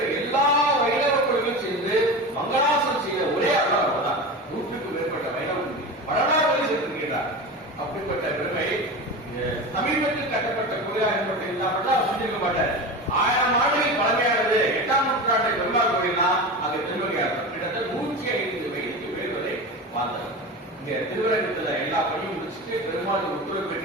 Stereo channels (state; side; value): normal; both; correlation 0.27